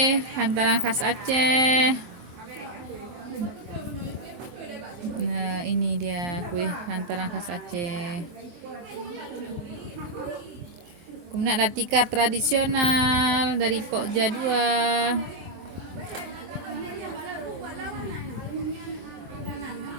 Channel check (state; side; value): late; left; 24 ms